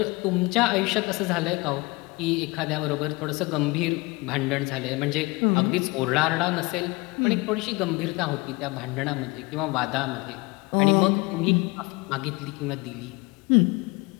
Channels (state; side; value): quieter; right; 24.9 dB